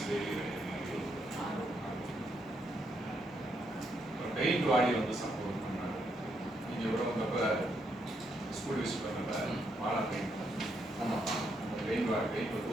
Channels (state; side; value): normal; both; correlation 0.77